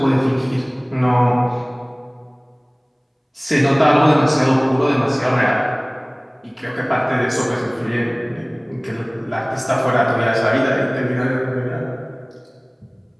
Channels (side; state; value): both; identical; correlation 1.00